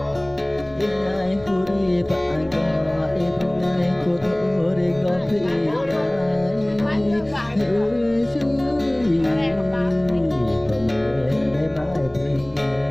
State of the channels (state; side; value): noise; right; rumble, 29 dB below the sound